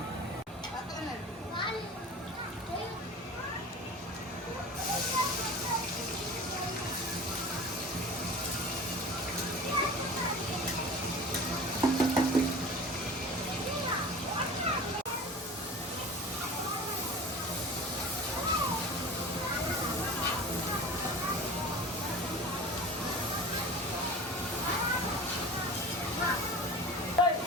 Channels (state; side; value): normal; both; correlation 0.36